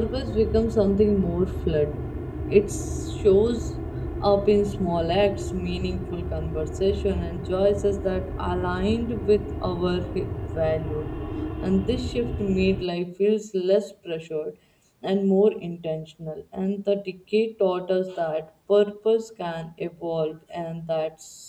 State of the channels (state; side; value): identical; both; correlation 1.00